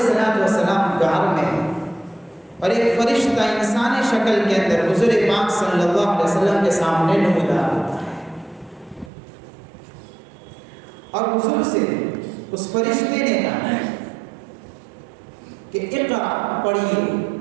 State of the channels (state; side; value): drops out; left; at 9.1 s